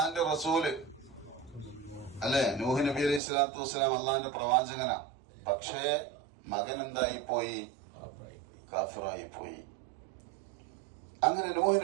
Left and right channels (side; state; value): left; drops out; at 3.2 s